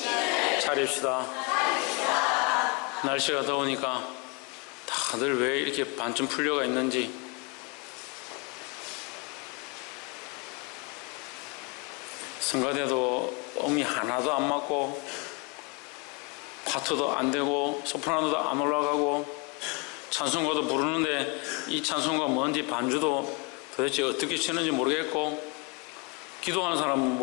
차립시다. 날씨가 더우니까 다들 왜 이렇게 반쯤 풀려가 있는지. 성가대도 음이 하나도 안 맞고 파트도 안 되고 소프라노도 안 올라가고 찬송가도 부르는데 이 찬송가 뭔지 반주도 도대체 어떻게 치는지 모르겠고, 기도하는 사람은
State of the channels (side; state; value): right; quieter; 29.6 dB